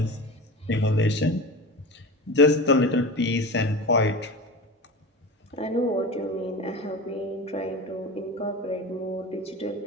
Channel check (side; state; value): both; normal; correlation 0.29